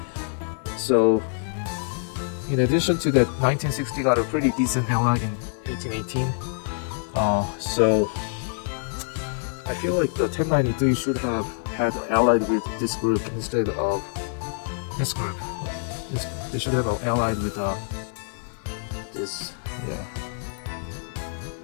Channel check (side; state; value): right; silent; 61 dB below the other